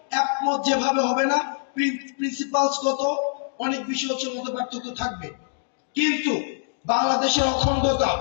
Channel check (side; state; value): right; silent; digital silence